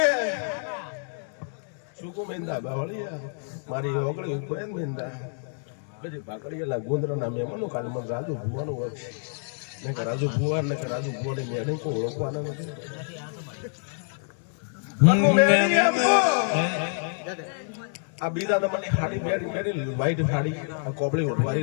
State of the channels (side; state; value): right; silent; digital silence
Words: શું કહું મિંદા બાવળિયા મારી ઓગળી ઉપડે ને મિંદા. પછી ભાકડીયા ગુંદરાના મહેમાનો કાલે મને રાજુ ભુવાનું હોય ને કે રાજુ ભુવા ને કે રાજુ ભુવાની મેડમ કોઈ ઓળખવાના નથી. આ બીજા નંબરની ખાડી મેળી વ્હાઈટ ખાડી, આ કોબળી